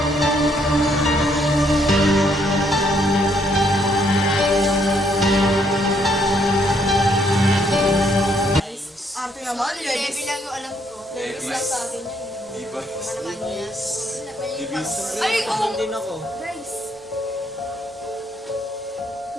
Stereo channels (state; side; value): normal; both; correlation 0.70